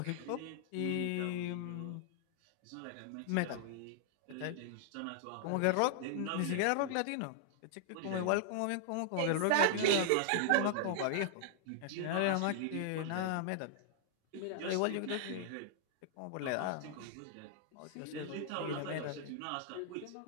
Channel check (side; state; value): both; different; correlation -0.01